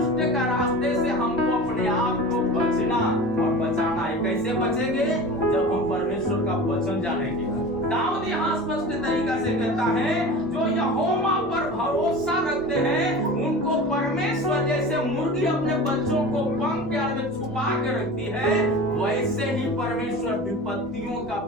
का रास्ते से हमको अपने आप को बचना और बचाना है। कैसे बचेंगे? जब हम परमेश्वर का वचन जानेंगे। दाऊद यहाँ स्पष्ट तरीका से कहता है, जो यहोवा पर भरोसा रखते हैं उनको परमेश्वर जैसे मुर्गी अपने बच्चों को पंख के आड़ में छुपा के रखती है, वैसे ही परमेश्वर विपत्तियों का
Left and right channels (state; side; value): normal; both; correlation 0.34